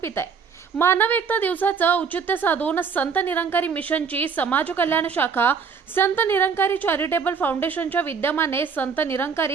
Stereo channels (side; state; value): left; quieter; 5.9 dB